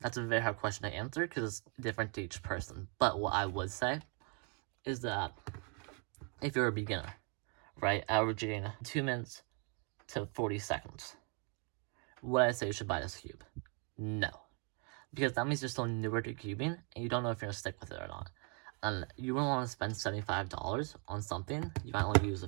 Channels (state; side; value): quieter; left; 37.5 dB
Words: a very hard question to answer because it's different to each person. But what I would say is that if you're a beginner, right, averaging 2 minutes to 40 seconds, would I say you should buy this cube? No. Because that means you're still newer to cubing and you don't know if you're going to stick with it or not. And you wouldn't want to spend $75 on something you might only use